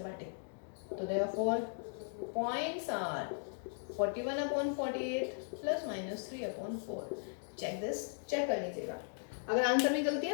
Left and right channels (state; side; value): silent; right; digital silence